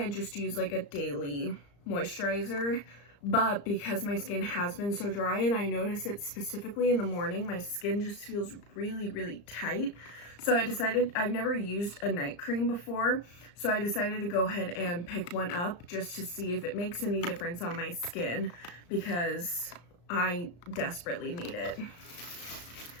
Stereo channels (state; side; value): late; right; 35 ms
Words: just use a daily moisturizer, but because my skin has been so dry, and I notice it specifically in the morning, my skin just feels really tight. So I decided, I've never used a night cream before, so I decided to go ahead and pick one up just to see if it makes any difference on my skin, because I desperately need it.